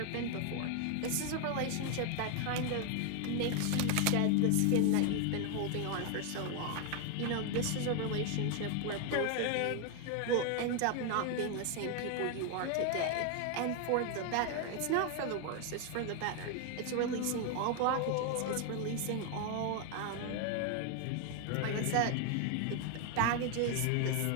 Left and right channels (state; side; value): different; both; correlation 0.01